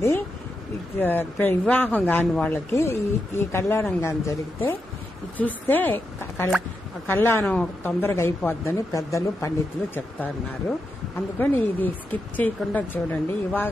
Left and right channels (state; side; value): normal; both; correlation 0.86